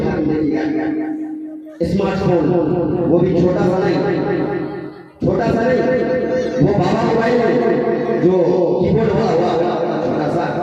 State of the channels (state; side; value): identical; both; correlation 1.00